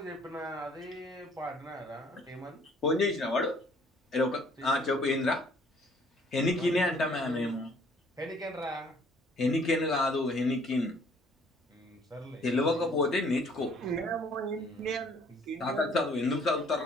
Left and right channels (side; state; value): both; normal; correlation 0.59